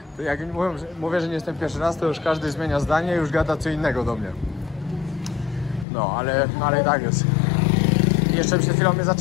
To jak mówię, że nie jestem pierwszy raz, to już każdy zmienia zdanie i już gada co innego do mnie. No, ale i tak jest. I jeszcze przed chwilą mnie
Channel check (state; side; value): drops out; right; at 5.9 s